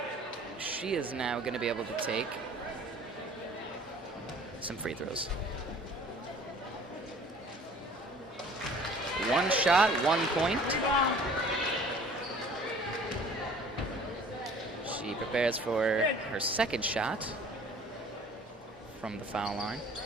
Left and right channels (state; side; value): normal; both; correlation 0.50